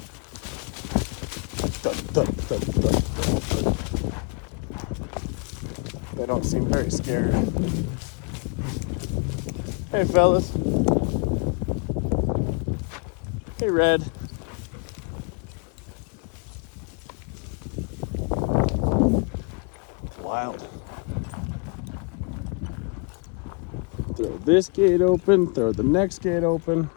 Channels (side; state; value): right; quieter; 35.6 dB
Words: They don't seem very scared. fellas. Hey, Red. Wild. Throw this gate open, throw the next gate open.